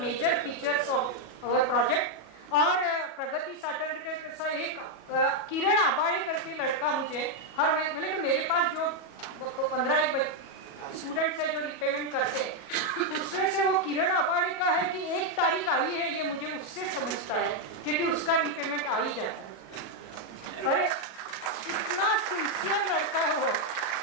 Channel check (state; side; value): late; right; 37 ms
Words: features of our project. और प्रगति सैटरडे का एक किरण आबाड़े करके लड़का मुझे हर महीने, तो मेरे पास जो 15 स्टूडेंट्स है जो रिपेमेंट करते हैं, उसमें से वो किरण आबाड़े का है कि 1 तारीख आई है, ये मुझे उससे समझता है क्योंकि उसका रिपेमेंट आ ही जाता है। अरे इतना सिंसियर लड़का है वो।